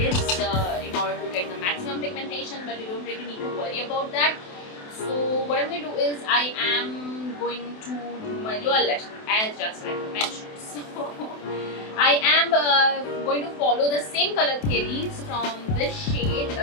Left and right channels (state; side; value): late; right; 28 ms